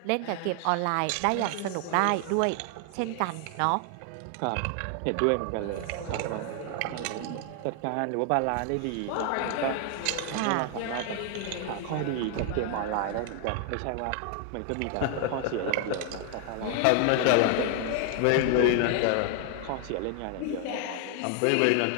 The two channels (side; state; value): both; different; correlation 0.00